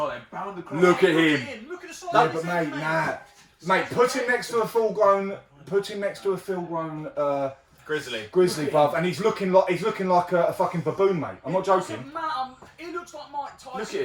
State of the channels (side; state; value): both; identical; correlation 1.00